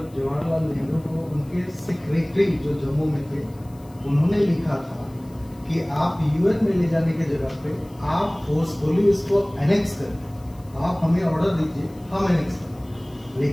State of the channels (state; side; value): noise; left; hiss, 28 dB below the sound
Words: जवाहरलाल नेहरू को उनके सेक्रेटरी जो जम्मू में थे उन्होंने लिखा था कि आप यूएन में ले जाने की जगह पे आप फोर्सफुली इसको एनेक्स करें, आप हमें ऑर्डर दीजिए, हम एनेक्स करें।